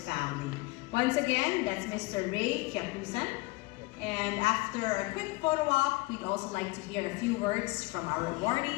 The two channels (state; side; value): quieter; right; 23.2 dB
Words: family. Once again, that's Mr. Ray Kyakusan. And after a quick photo op, we'd also like to hear a few words from our